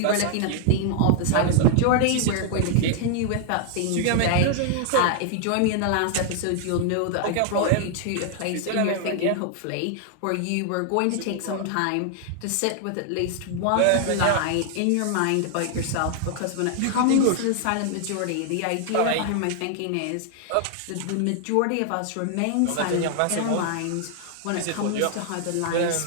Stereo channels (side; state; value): both; different; correlation 0.00